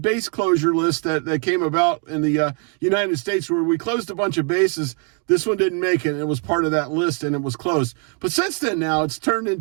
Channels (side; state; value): left; quieter; 37.5 dB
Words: closure list that came about in the United States, where we closed a bunch of bases. This one didn't make it. It was part of that list, and it was closed. But since then, now, it's turned